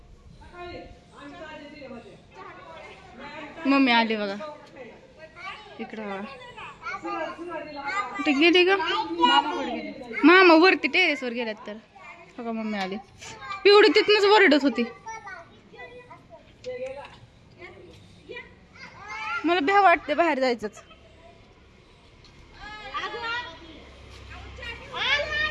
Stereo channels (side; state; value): both; identical; correlation 1.00